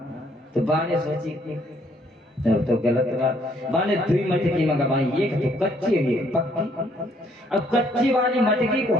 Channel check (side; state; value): both; normal; correlation 0.67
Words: तो बाने सोची तो गलत बात बाने दुई मटकी मंगवाई एक तो कच्ची है एक पक्की। अब कच्ची वाली मटकी को